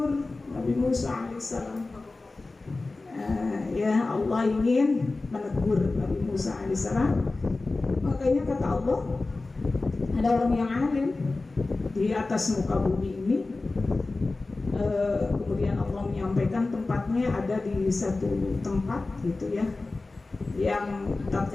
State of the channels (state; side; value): quieter; right; 3.4 dB